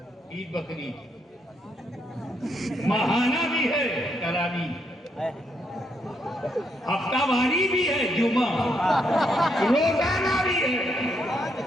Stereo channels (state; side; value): normal; both; correlation 0.76